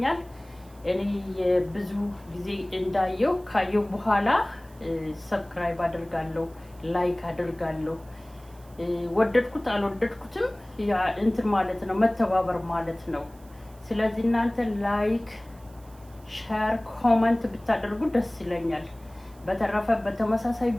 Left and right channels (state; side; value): noise; right; hiss, 28 dB below the sound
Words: እኔ ብዙ ጊዜ እንዳየው ካየው በኋላ ሰብስክራይብ አደርጋለሁ፣ ላይክ አደርጋለሁ። ወደድኩት አልወደድኩትም ያ እንትን ማለት ነው፣ መተባበር ማለት ነው። ስለዚህ እናንተ ላይክ፣ ሼር፣ ኮሜንት ብታደርጉ ደስ ይለኛል። በተረፈ በተመሳሳይ